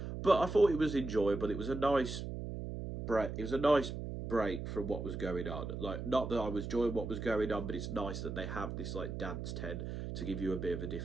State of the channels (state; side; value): noise; right; hum, 6 dB below the sound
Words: but I thought it was enjoyable. It was a nice break. It was a nice break from what was going on. Like, not that I was enjoying what was going on, but it's nice that they have this like dance tent to give you a bit of a